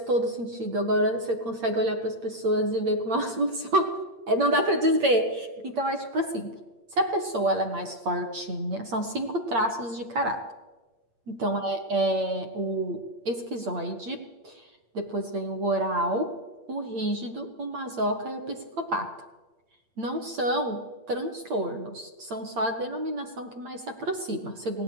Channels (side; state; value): left; late; 8.7 ms